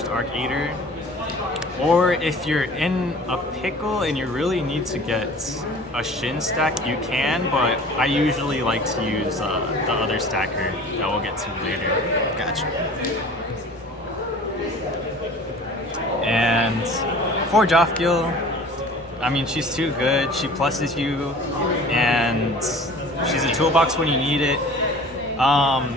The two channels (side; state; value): both; normal; correlation 0.45